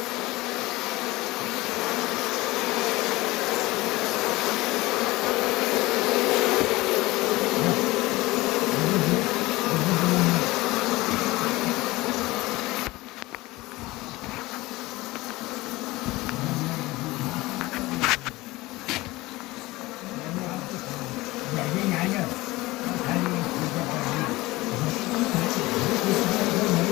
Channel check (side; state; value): right; quieter; 20.1 dB